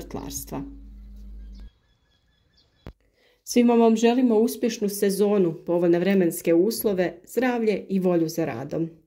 Svima vam želimo uspješnu sezonu, povoljne vremenske uslove, zdravlje i volju za radom.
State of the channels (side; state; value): both; identical; correlation 1.00